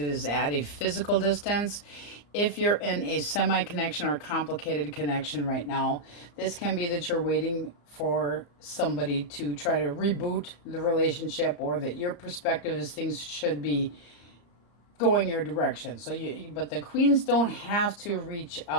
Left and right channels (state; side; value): late; right; 34 ms